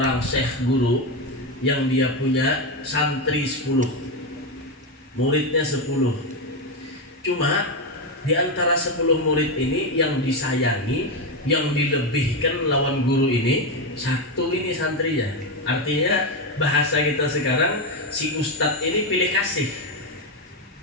syekh guru yang dia punya santri 10, muridnya 10. Cuma di antara 10 murid ini yang disayangi, yang dilebihkan lawan guru ini, satu ini santrinya. Artinya bahasa kita sekarang, si ustadz ini pilih kasih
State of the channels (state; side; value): normal; both; correlation 0.10